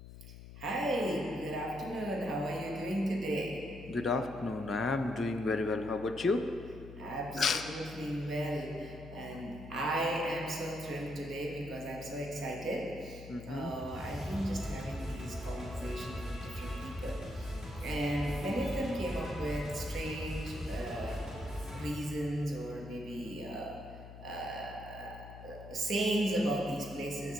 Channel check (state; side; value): noise; left; hum, 14 dB below the sound